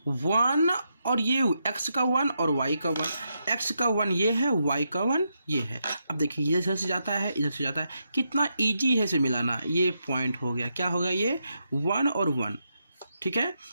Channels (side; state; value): both; inverted; correlation -0.82